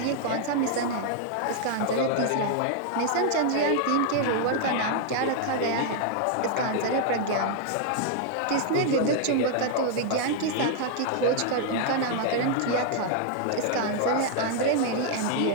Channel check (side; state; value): both; different; correlation 0.00